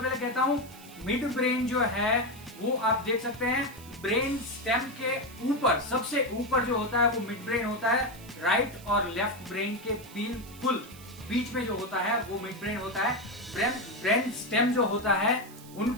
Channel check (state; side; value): noise; right; hiss, 20 dB below the sound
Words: कहता हूं, मिड ब्रेन जो है वो आप देख सकते हैं ब्रेन स्टेम के ऊपर, सबसे ऊपर जो होता है वो मिड ब्रेन होता है। राइट और लेफ्ट ब्रेन के बिल्कुल बीच में जो होता है वो मिड ब्रेन होता है। ब्रेन स्टेम जो होता है